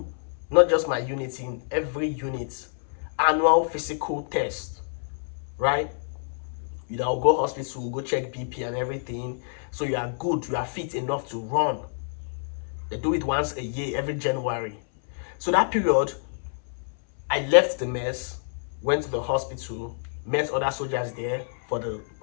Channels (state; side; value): silent; right; 60 dB below the other